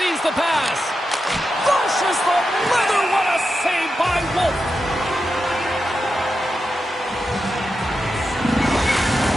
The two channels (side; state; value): both; normal; correlation 0.88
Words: the pass. Flushes the leather. What a save by Wolf.